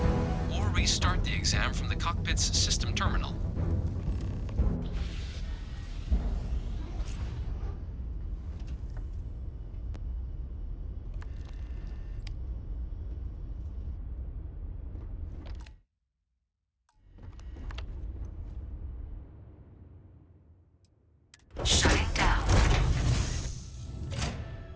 or restart the exam from the cockpit's system terminal. Shutting down.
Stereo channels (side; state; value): both; identical; correlation 1.00